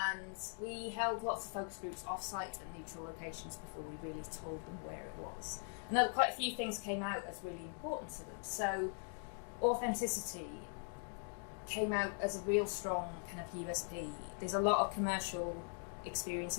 we held lots of focus groups off-site and neutral locations before we really told them where it was. And quite a few things came out as really important to them. So authenticity came out as a real strong kind of USP. There's a lot of commercial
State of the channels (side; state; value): right; silent; 50 dB below the other